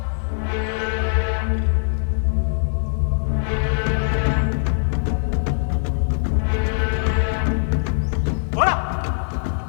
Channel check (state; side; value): silent; right; digital silence